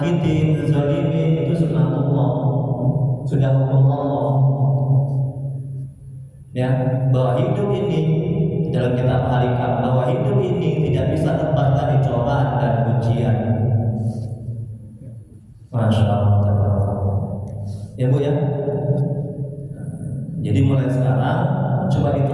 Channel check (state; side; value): identical; both; correlation 1.00